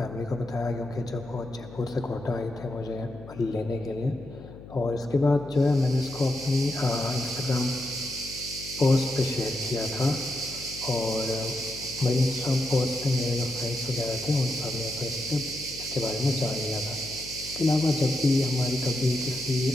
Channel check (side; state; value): left; noise; hum, 16 dB below the sound